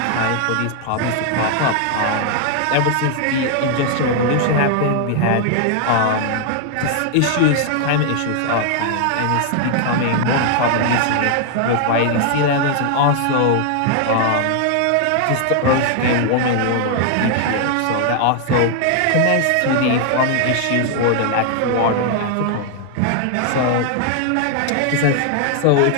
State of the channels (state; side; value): different; both; correlation 0.00